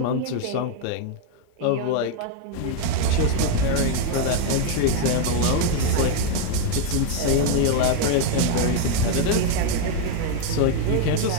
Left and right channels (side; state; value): both; different; correlation 0.01